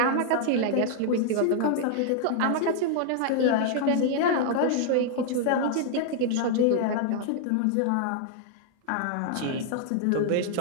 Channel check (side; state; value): both; different; correlation -0.01